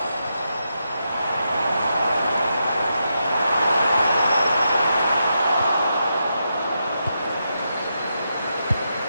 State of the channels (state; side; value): inverted; both; correlation -0.84